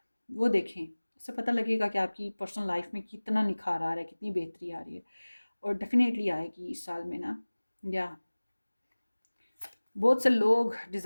वो देखें, इससे पता लगेगा कि आपकी पर्सनल लाइफ में कितना निखार आ रहा है, कितनी बेहतरी आ रही है। और डेफिनेटली आएगी इस साल में ना। या बहुत से लोग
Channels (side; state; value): both; inverted; correlation -1.00